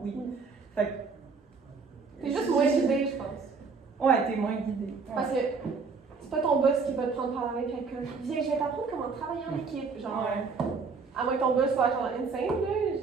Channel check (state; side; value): quieter; left; 4.9 dB